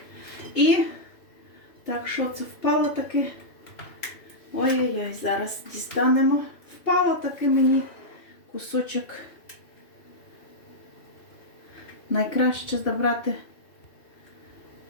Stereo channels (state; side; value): late; right; 2.7 ms